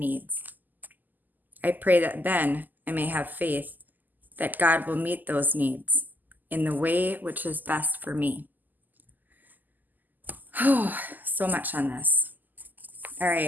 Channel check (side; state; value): left; late; 0.085 ms